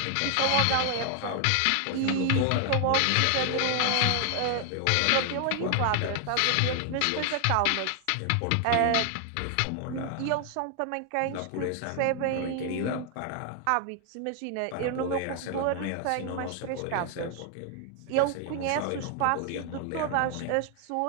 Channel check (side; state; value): both; different; correlation 0.00